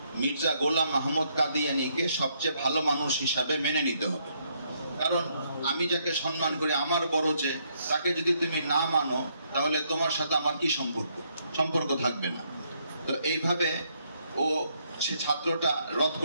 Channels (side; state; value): both; inverted; correlation -0.73